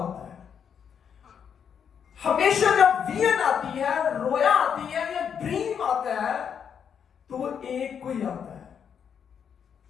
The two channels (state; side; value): quieter; right; 7.6 dB